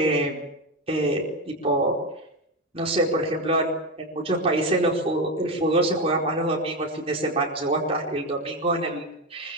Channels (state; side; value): normal; both; correlation 0.13